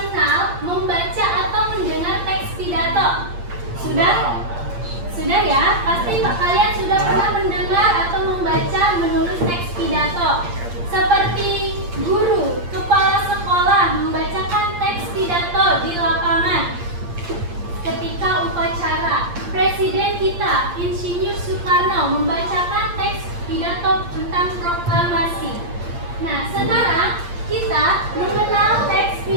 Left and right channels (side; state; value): left; late; 8.6 ms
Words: membaca atau mendengar teks pidato? Sudah? Sudah ya? Pasti kalian sudah pernah mendengar atau membaca, menulis teks pidato. Seperti guru, kepala sekolah membacakan teks pidato di lapangan ketika upacara. Presiden kita, Insinyur Soekarno, membacakan teks pidato tentang proklamasi. Nah, sekarang kita mengenal teks